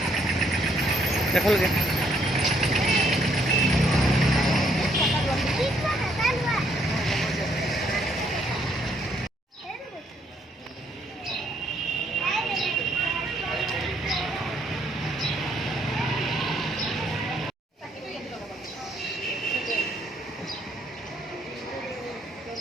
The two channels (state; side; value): normal; both; correlation 0.69